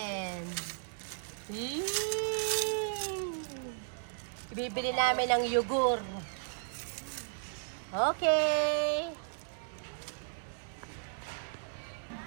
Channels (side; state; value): left; silent; digital silence